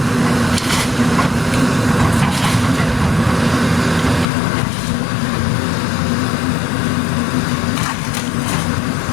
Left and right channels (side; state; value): right; drops out; at 4.2 s